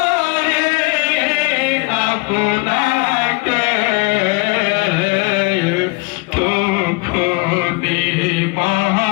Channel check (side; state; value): right; quieter; 27.8 dB